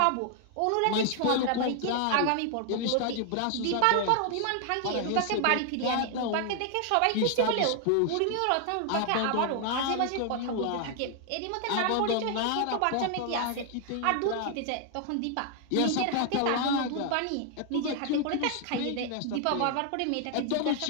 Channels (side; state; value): both; different; correlation 0.00